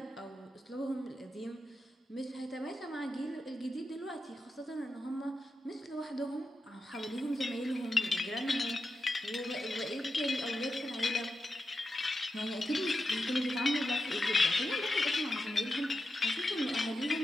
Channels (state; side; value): normal; both; correlation 0.88